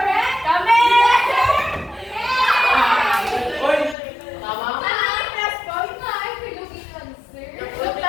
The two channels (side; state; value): right; drops out; at 4.0 s